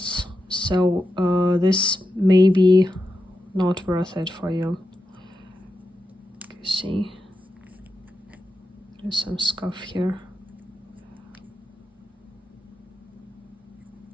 so this may be not worth it for you. You see, there's some scuff here.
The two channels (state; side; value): normal; both; correlation 0.88